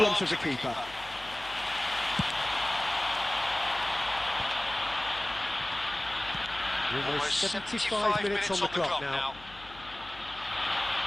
arms of the keeper. Almost 75 minutes on the clock now.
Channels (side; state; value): left; noise; hum, 20 dB below the sound